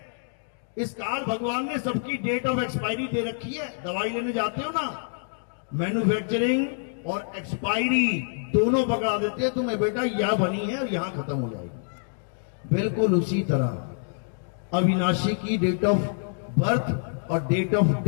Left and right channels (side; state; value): right; silent; digital silence